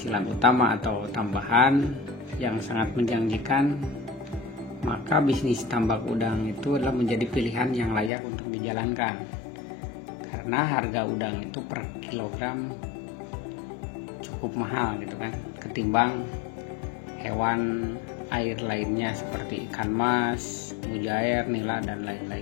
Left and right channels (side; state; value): right; drops out; at 8.1 s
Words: utama atau tambahan yang sangat menjanjikan, maka bisnis tambak udang itu adalah menjadi pilihan yang layak untuk dijalankan. Karena harga udang itu per kilogram cukup mahal gitu kan, ketimbang hewan air lainnya seperti ikan mas, mujair, nila, dan